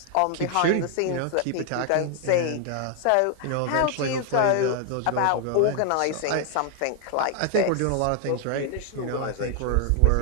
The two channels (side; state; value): both; different; correlation 0.00